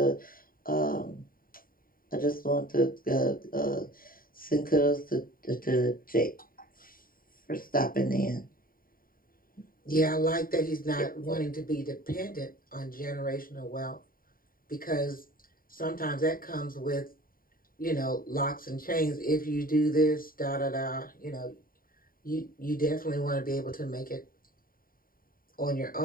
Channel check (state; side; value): late; right; 0.41 ms